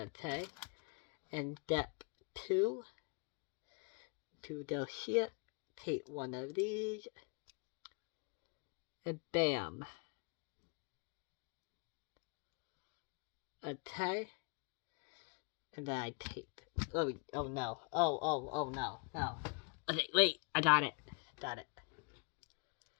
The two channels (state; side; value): quieter; right; 37.2 dB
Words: And step 2. To go here. Take one of these. And bam. Okay. And then I take. Oh no. Oh no. No. Okay, wait. I got it. Got it.